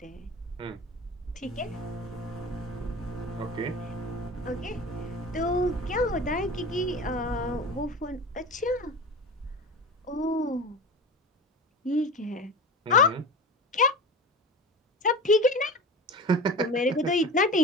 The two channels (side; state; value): both; normal; correlation 0.30